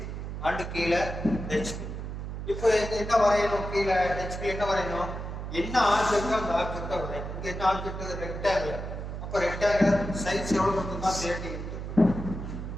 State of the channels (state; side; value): noise; right; hum, 6 dB below the sound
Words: அண்ட் கீழ hp. இப்போ என்ன வரையணும்? கீழ hp என்ன வரையணும்? என்ன ஆப்ஜெக்ட் அந்த ஆப்ஜெக்ட்டை வரையணும். இங்க என்ன ஆப்ஜெக்ட்? ரெக்டாங்குலர். அப்ப ரெக்டாங்குலர் சைஸ் எவ்வளவு வந்துன்னா 30 into